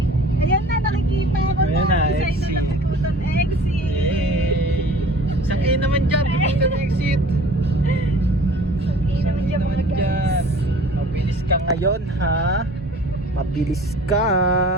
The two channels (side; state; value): both; normal; correlation 0.47